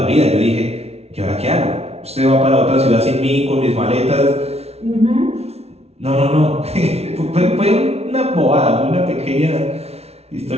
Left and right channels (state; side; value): late; left; 0.31 ms